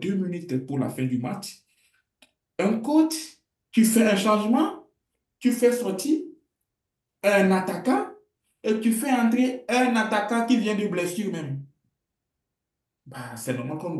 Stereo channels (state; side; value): identical; both; correlation 1.00